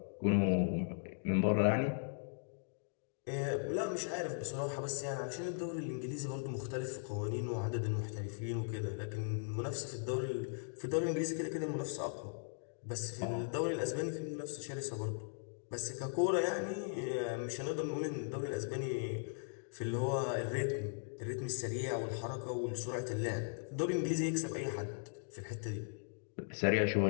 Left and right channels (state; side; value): silent; right; digital silence